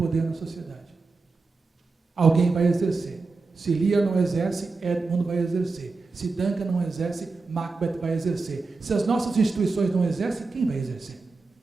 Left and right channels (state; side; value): quieter; left; 4.0 dB